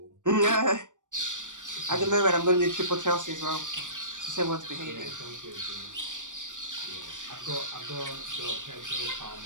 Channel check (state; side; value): late; left; 0.87 ms